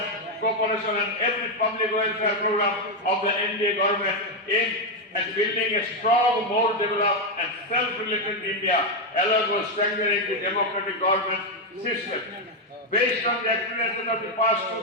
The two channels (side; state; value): both; normal; correlation 0.04